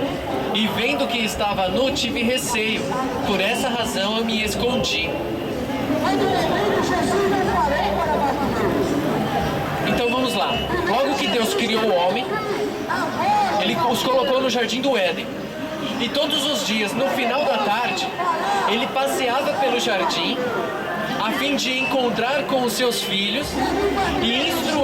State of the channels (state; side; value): identical; both; correlation 1.00